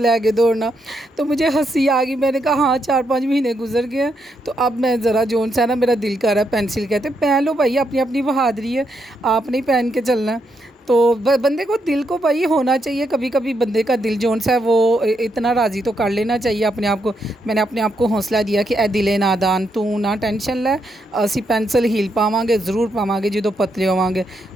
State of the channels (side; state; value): both; normal; correlation 0.79